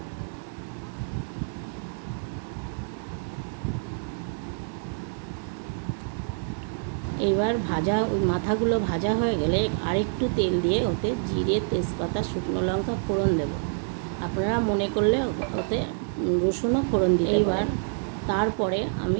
এবার মাথাগুলো ভাজা হয়ে গেলে আরেকটু তেল দিয়ে ওতে জিরে, তেজপাতা, শুকনো লঙ্কা ফোড়ন দেব। আপনারা মনে করলে ওতে রসুনও ফোড়ন দিতে পারেন। এইবার তারপরে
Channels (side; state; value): left; silent; 60 dB below the other